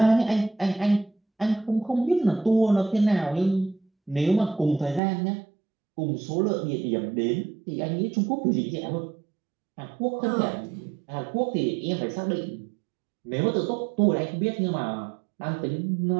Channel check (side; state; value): left; drops out; at 5.0 s